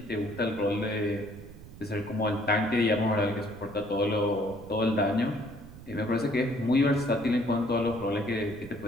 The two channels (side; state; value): right; noise; rumble, 17 dB below the sound